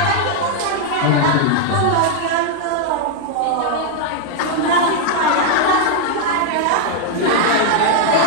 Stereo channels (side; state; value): both; different; correlation 0.00